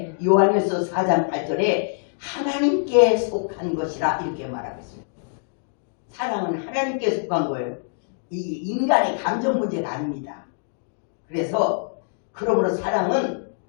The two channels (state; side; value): silent; right; digital silence